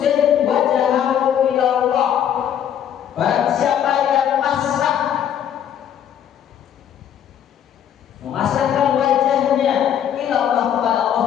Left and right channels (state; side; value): quieter; right; 9.6 dB